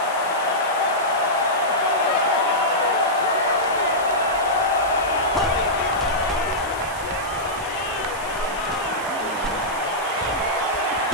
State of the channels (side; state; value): left; noise; hiss, 17 dB below the sound